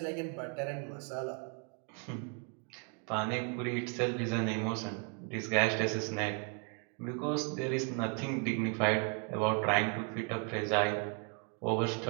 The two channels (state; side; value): quieter; left; 37.1 dB